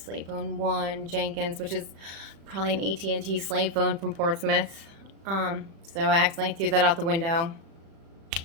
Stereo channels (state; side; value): late; left; 36 ms